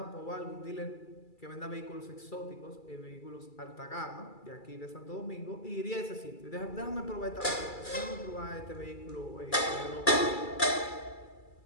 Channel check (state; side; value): late; right; 2.3 ms